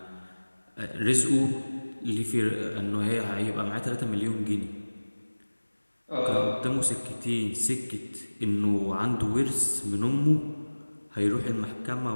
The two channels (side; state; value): both; inverted; correlation -1.00